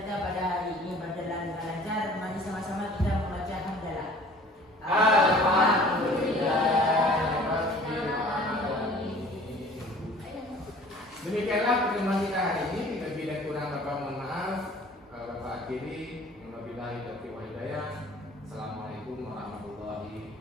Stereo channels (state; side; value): normal; both; correlation 0.49